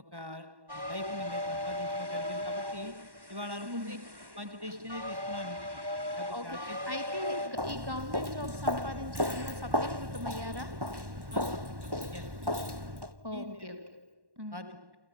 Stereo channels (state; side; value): late; left; 1.1 ms